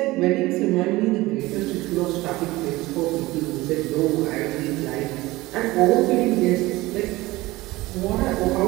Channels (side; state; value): left; quieter; 19.5 dB